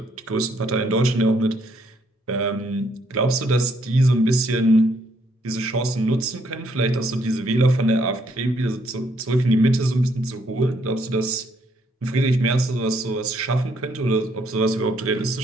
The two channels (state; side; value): normal; both; correlation 0.70